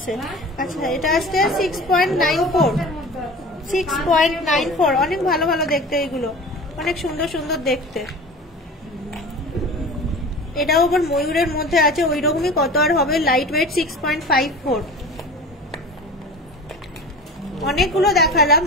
আচ্ছা এটা আসছে 6.94, 6.94। অনেক ভালো ভালো দেখতে, এগুলো অনেক সুন্দর সুন্দর দেখতে। এটাও আবার ময়ূরের মধ্যে আছে, ওই রকমই কত আর হবে, লাইট ওয়েট 6.54। অনেকগুলো দেখালাম,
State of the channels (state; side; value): normal; both; correlation 0.36